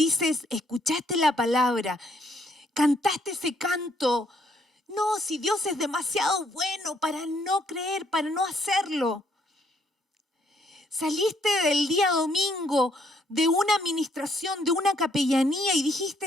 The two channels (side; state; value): both; normal; correlation 0.70